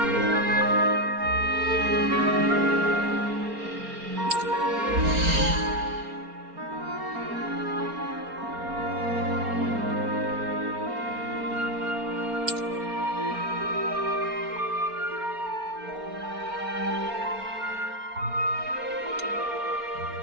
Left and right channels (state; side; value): late; left; 4.3 ms